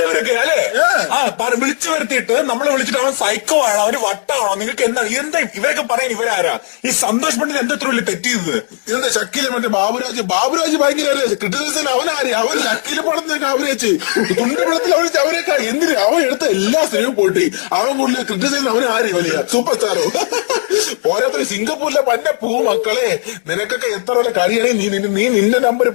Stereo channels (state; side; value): silent; right; 66 dB below the other